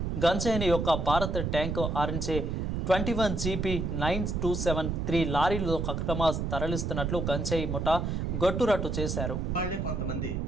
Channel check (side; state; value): right; noise; rumble, 1 dB below the sound